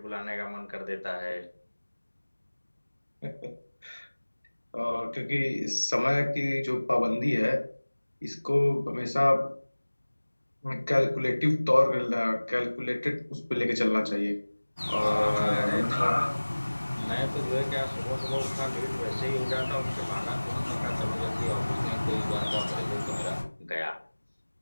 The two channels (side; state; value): both; inverted; correlation -1.00